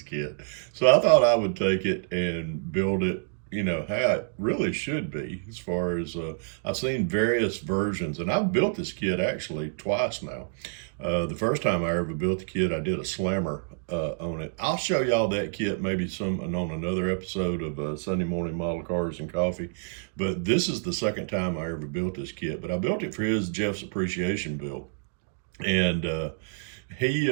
kit. So I thought I would take it and build it, how it really should be. As far as I've seen various versions, and I've built this kit actually twice now. The first time I ever built the kit, I did a slammer on it. I'll show y'all that kit maybe on another episode of Sunday Morning Model Cars and Coffee. But this is the second time I ever built this kit. But I built it for Jeff's appreciation build. And he,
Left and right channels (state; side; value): silent; left; digital silence